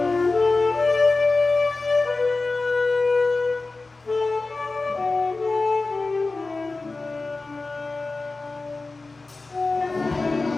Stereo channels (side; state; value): right; quieter; 3.5 dB